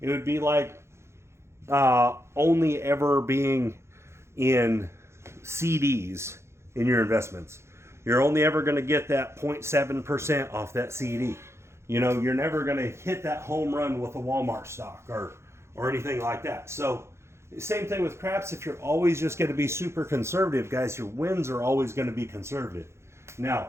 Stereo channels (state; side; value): late; left; 0.13 ms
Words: would be like only ever being in CDs in your investments. You're only ever going to get that 0.7% off that CD. You know, you're never going to hit that home run with a Walmart stock or anything like that. So Same thing with craps. If you're always just going to be super conservative, guys, your wins are always going to be conservative.